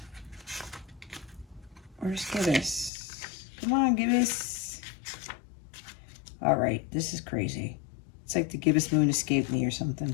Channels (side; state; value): right; drops out; at 2.9 s